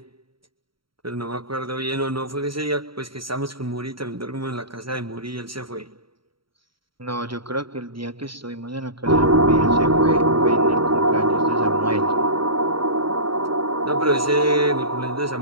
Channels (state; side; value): late; left; 0.74 ms